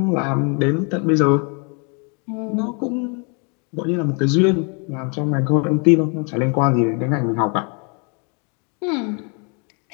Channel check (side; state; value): right; quieter; 35.6 dB